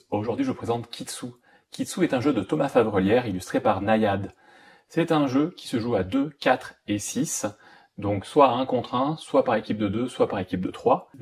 Aujourd'hui, je vous présente Kitsu. Kitsu est un jeu de Thomas Favrelière illustré par Nayad. C'est un jeu qui se joue à 2, 4 et 6, donc soit à 1 contre 1, soit par équipe de 2, soit par équipe de 3.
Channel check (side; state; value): both; identical; correlation 1.00